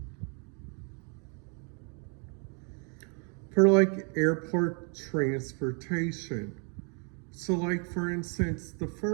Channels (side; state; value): left; quieter; 37.8 dB